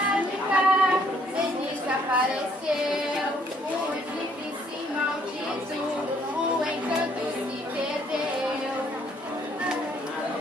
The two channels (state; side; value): normal; both; correlation 0.65